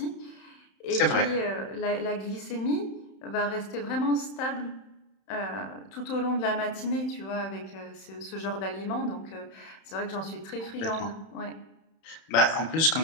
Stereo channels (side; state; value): right; late; 31 ms